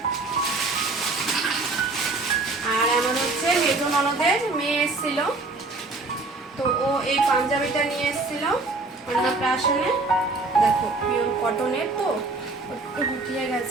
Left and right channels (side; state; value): left; quieter; 3.4 dB